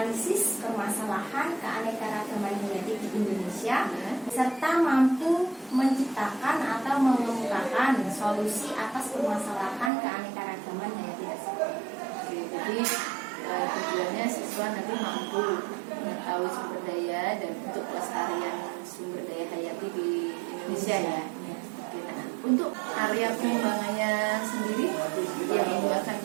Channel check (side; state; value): left; drops out; at 9.9 s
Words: permasalahan keanekaragaman genetik di Indonesia, serta mampu menciptakan atau mengemukakan solusi atas permasalahan keanekaragaman hayati tersebut. Oke, jadi tujuannya siswa nanti mampu mengetahui sumber daya dan untuk pelestarian sumber daya hayati di Indonesia ya. Oke, nah, untuk area pengembangannya sendiri yang Ibu akan